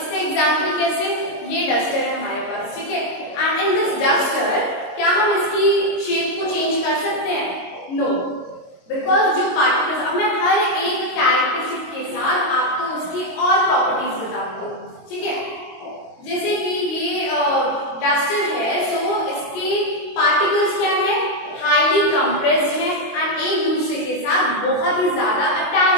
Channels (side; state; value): right; late; 22 ms